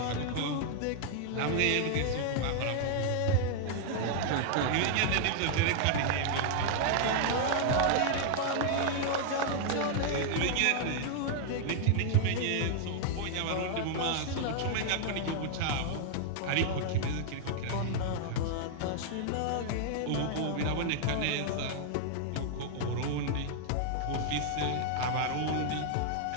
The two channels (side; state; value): both; different; correlation 0.00